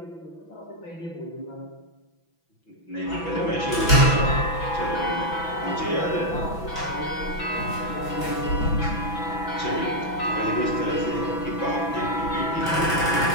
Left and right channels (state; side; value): late; right; 6.0 ms